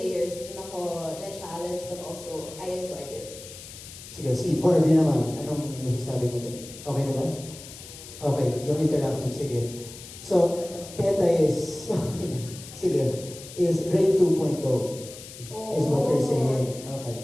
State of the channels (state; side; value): noise; left; hiss, 15 dB below the sound